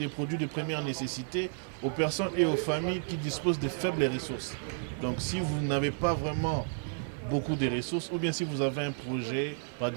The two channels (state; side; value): silent; left; 57 dB below the other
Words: produits de première nécessité aux personnes et aux familles qui disposent de faibles ressources. Donc si vous n'avez pas vraiment beaucoup de ressources, ou bien si vous avez un projet, par